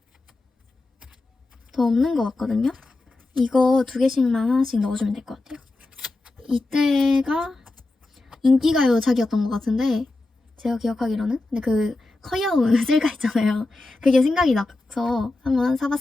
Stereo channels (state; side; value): quieter; right; 3.0 dB